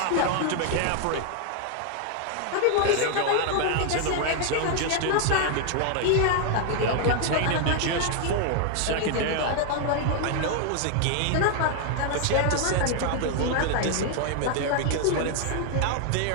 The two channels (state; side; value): different; both; correlation 0.00